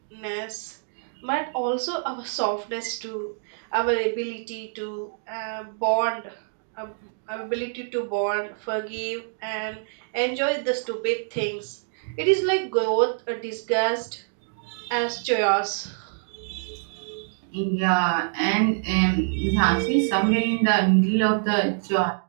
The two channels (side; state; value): left; silent; digital silence